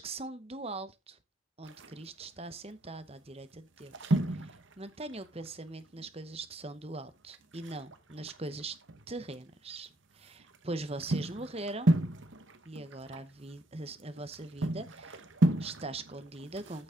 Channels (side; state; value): both; normal; correlation 0.73